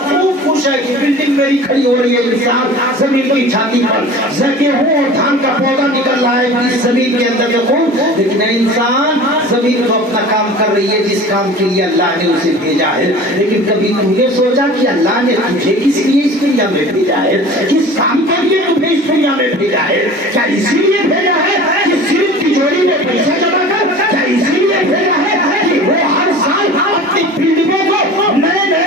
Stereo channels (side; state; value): both; normal; correlation 0.40